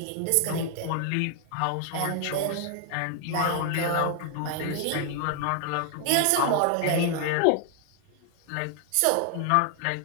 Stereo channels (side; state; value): both; different; correlation 0.00